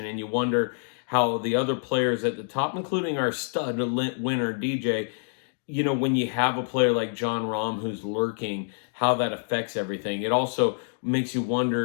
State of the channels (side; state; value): right; silent; digital silence